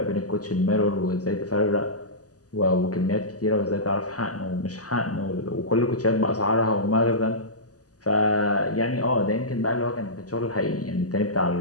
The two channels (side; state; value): right; late; 0.67 ms